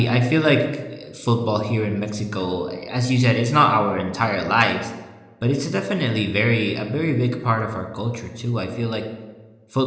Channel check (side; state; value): both; identical; correlation 1.00